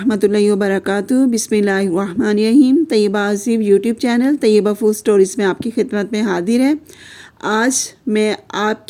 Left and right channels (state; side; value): identical; both; correlation 1.00